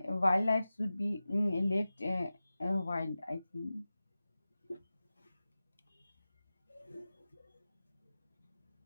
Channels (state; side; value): inverted; both; correlation -0.95